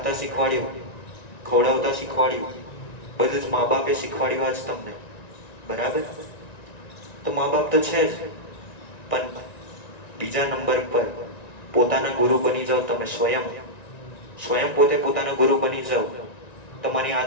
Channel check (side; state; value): right; late; 1.9 ms